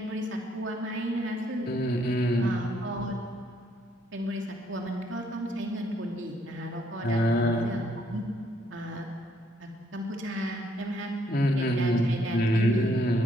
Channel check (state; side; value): normal; both; correlation 0.70